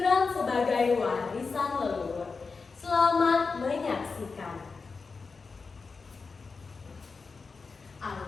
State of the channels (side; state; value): right; quieter; 4.6 dB